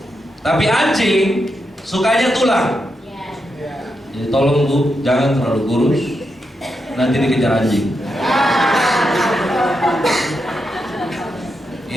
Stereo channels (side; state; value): both; normal; correlation 0.85